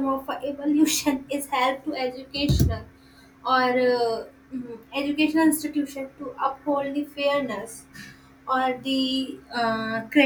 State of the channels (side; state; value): both; identical; correlation 1.00